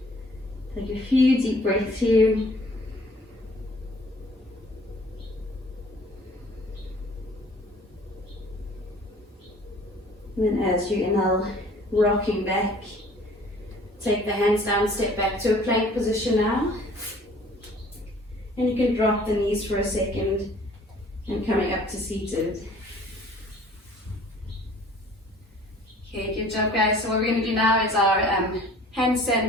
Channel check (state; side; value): normal; both; correlation 0.53